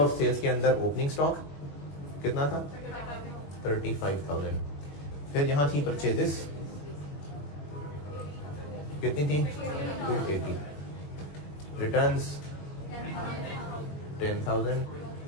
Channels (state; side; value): late; right; 21 ms